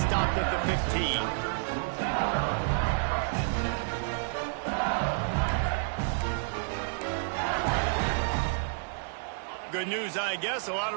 at the 15. Good news, I guess. A lot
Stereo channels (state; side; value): silent; left; digital silence